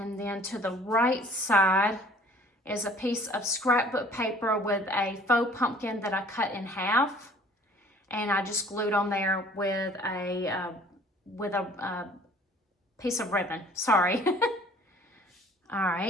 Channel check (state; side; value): normal; both; correlation 0.53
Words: then to the right side is a piece of scrapbook paper with a faux pumpkin that I cut in half, and I just glued on there with a piece of ribbon. Sorry. All